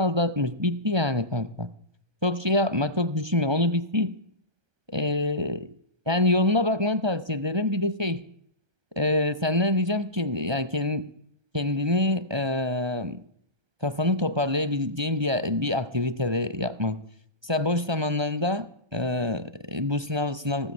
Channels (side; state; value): left; late; 1.2 ms